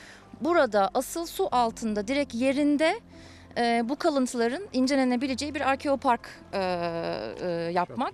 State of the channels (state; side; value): identical; both; correlation 1.00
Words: burada asıl su altında direkt yerinde bu kalıntıların incelenebileceği bir arkeopark